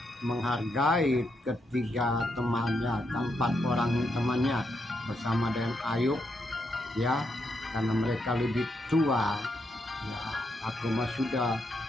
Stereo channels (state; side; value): normal; both; correlation 0.80